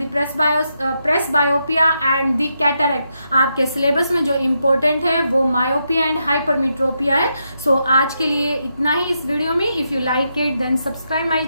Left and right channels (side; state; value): both; inverted; correlation -0.82